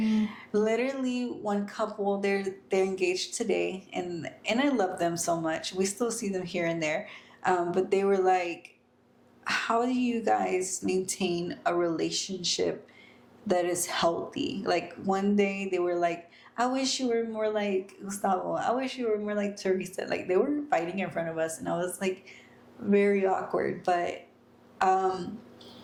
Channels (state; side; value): identical; both; correlation 1.00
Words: Literally, one couple, they're engaged today, and I love them so much. We still see them here and there, but they were like, "How do you guys maintain a relationship that is healthy?" Like, one day they were like, "I wish you were more like Gustavo. I wish you were more like Teresa." Like, they were fighting in front of us, and I was like, very awkward. But